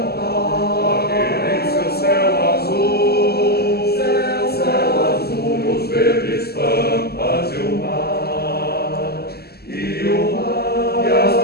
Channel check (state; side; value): late; right; 0.46 ms